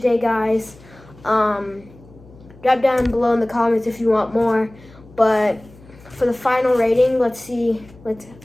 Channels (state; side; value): noise; left; hum, 23 dB below the sound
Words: guys. Drop down below in the comments if you want more. But for the final rating, let's see. I'm